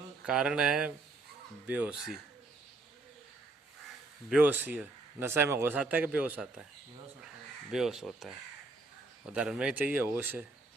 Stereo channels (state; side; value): quieter; left; 3.2 dB